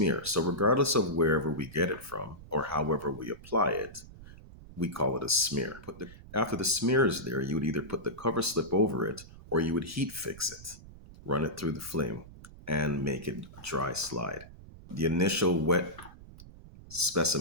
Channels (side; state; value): right; noise; rumble, 18 dB below the sound